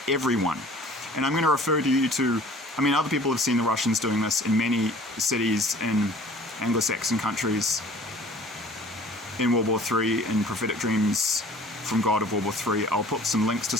everyone. And I'm going to refer you to, other people have seen the Russians doing this in many cities in Anglo-Saxon countries in World War III, in Prophetic Dreams from God of World War III. I'll put some links to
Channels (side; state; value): both; normal; correlation 0.49